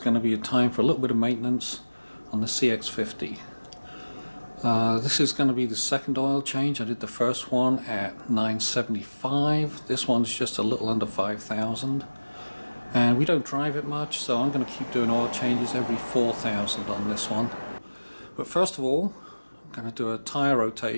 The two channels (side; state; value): both; inverted; correlation -1.00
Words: to be a time for a little bit of maintenance on the CX50. This is going to be the second oil change. I did the first one at 975. This one's just a little under 5,000, and we don't drive it much, so I'm going to keep doing oil changes every 4,000 on this one. But first of all, I'm going to do a tire